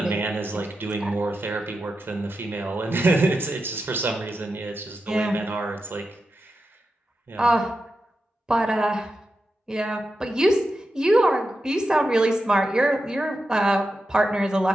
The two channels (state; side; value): normal; both; correlation 0.89